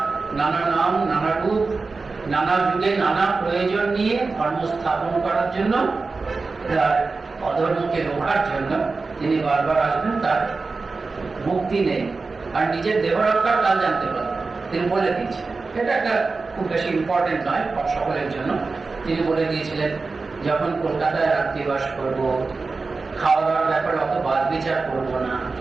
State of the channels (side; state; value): left; quieter; 4.0 dB